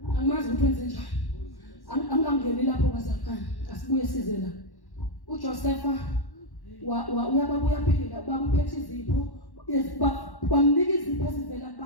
angimazi ukuthi wenze njani angangeni lapho bazakana asibuye size la uJosepha uyababuya phila babuphethe izipho bamnika izipho ezivela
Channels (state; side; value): late; right; 1.1 ms